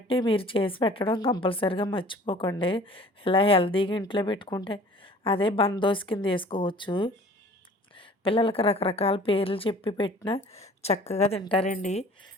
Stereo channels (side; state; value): both; normal; correlation 0.49